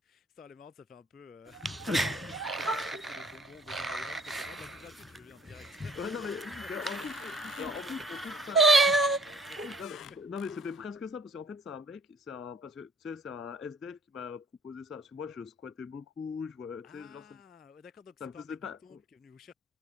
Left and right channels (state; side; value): normal; both; correlation 0.56